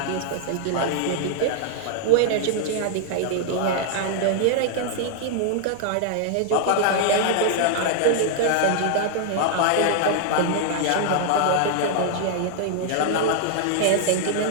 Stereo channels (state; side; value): different; both; correlation -0.01